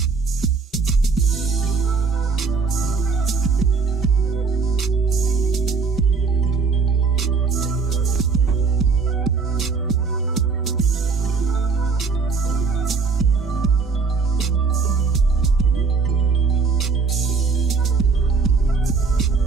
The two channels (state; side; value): quieter; left; 4.8 dB